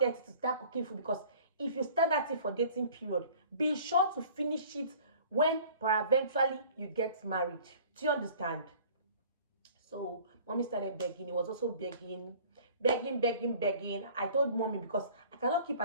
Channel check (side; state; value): both; inverted; correlation -0.49